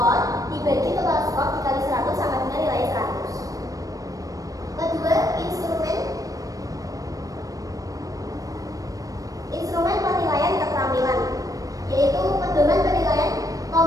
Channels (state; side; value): late; left; 0.17 ms